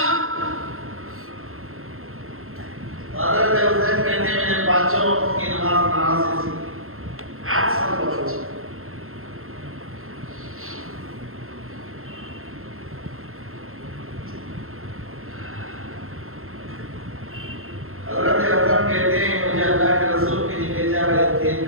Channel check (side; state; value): left; late; 0.62 ms